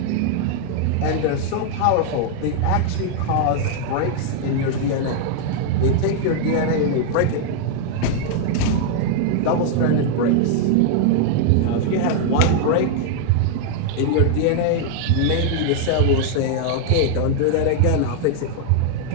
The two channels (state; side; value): different; both; correlation 0.00